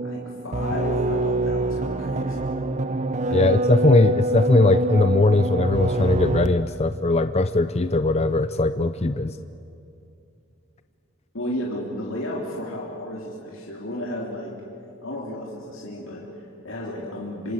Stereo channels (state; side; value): normal; both; correlation 0.57